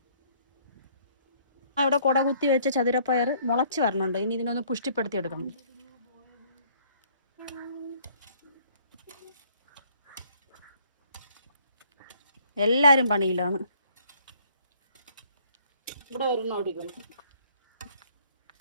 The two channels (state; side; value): inverted; both; correlation -0.62